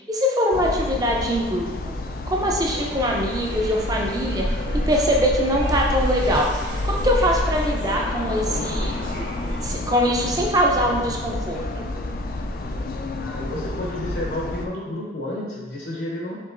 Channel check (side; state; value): both; normal; correlation 0.43